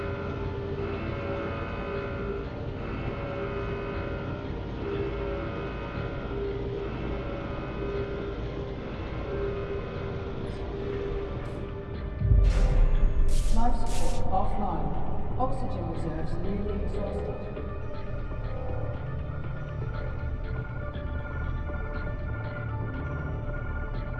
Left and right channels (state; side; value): identical; both; correlation 1.00